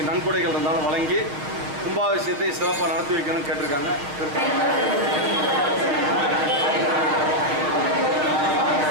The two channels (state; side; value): late; left; 6.7 ms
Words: நன்கொடைகள் இருந்தாலும் வழங்கி கும்பாபிஷேகத்தை சிறப்பாக நடத்தி வைக்கணும்னு கேட்டிருக்காங்க.